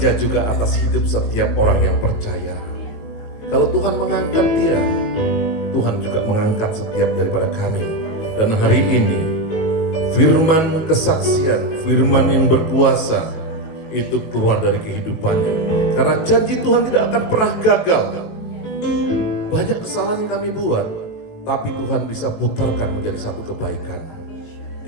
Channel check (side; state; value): right; late; 19 ms